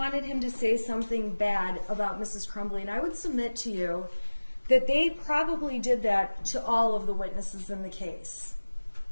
him to say something bad about Mrs. Crumbley. And I would submit to you that they probably did that to all of the witnesses in the case.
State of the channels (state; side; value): inverted; both; correlation -1.00